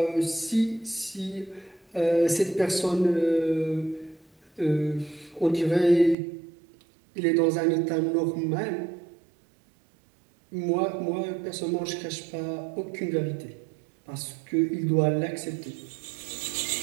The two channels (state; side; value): drops out; left; at 6.2 s